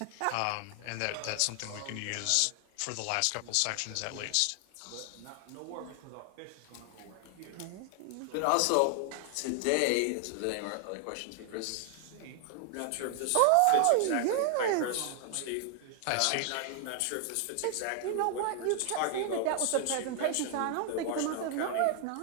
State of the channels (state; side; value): different; both; correlation 0.00